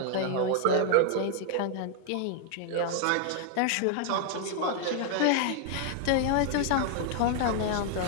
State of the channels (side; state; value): both; different; correlation 0.00